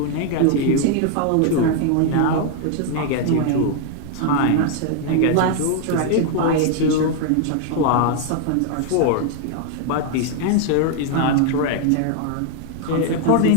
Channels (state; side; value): different; both; correlation 0.00